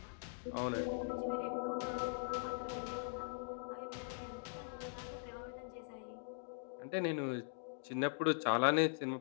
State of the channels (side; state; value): right; silent; digital silence